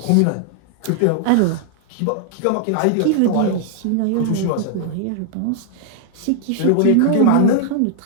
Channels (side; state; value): both; different; correlation 0.00